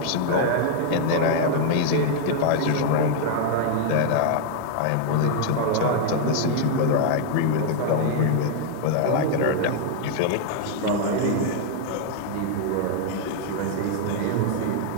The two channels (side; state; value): both; different; correlation 0.00